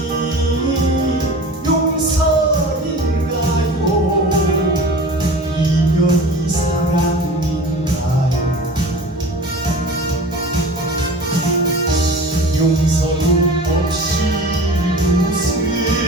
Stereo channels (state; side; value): normal; both; correlation 0.37